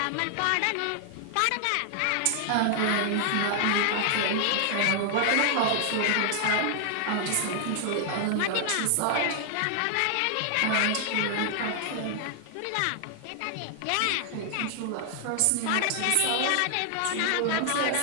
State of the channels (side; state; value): both; different; correlation 0.00